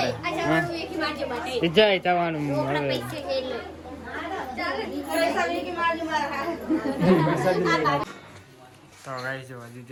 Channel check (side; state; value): both; identical; correlation 1.00